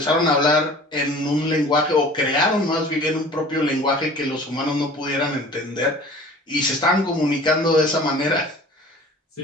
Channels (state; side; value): normal; both; correlation 0.45